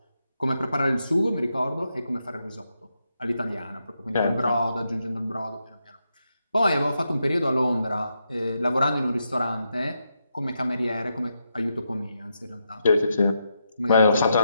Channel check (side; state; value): both; inverted; correlation -0.83